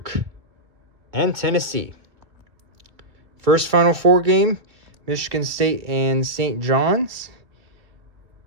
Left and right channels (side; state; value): left; late; 2.0 ms